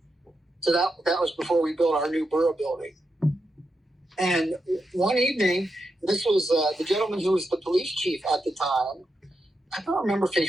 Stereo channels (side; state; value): both; normal; correlation 0.86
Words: So that was before we built our new borough building. And one evening, this was the gentleman who was the police chief at the time. I don't remember if he